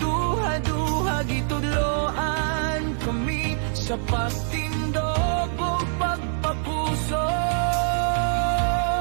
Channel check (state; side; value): silent; left; 55 dB below the other